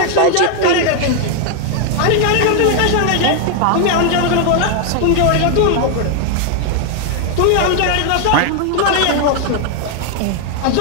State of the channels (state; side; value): different; both; correlation 0.00